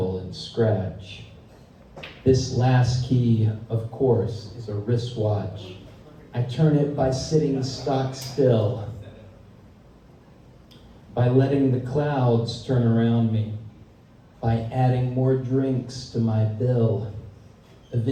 and scratch. This last key, of course, is a wristwatch. I turn it by sitting stock still, by letting the clouds turn around me, by adding more drinks to my bill.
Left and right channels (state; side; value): identical; both; correlation 1.00